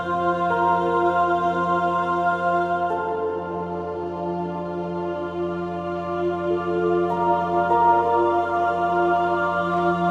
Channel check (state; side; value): identical; both; correlation 1.00